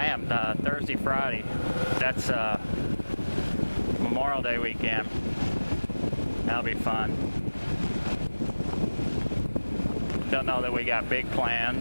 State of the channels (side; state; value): both; inverted; correlation -1.00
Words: am. Thursday, Friday. That's Memorial Day weekend. That'll be fun. Don't know that we got big